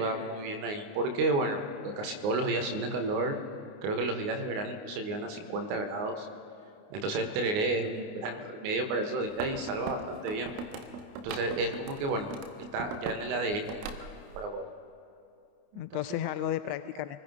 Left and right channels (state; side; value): late; left; 29 ms